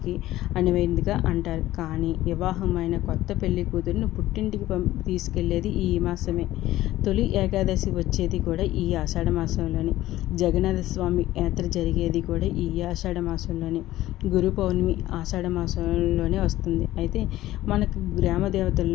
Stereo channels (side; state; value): right; quieter; 15.3 dB